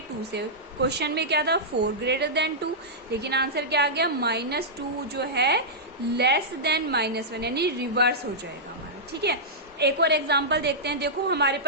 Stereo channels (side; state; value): both; normal; correlation -0.12